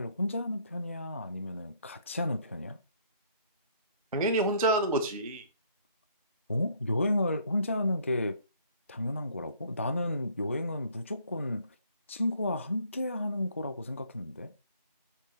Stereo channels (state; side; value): inverted; both; correlation -0.63